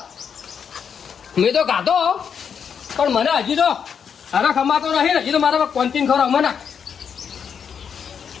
મેં તો ગાતો પણ મને હજી તો હરખ અમાતો નહીં. હજી તો મારા કોન્ટીન ખરો મને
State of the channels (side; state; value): right; quieter; 7.2 dB